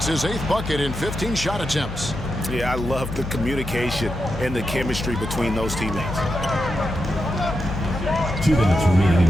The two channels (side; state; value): left; noise; hum, 8 dB below the sound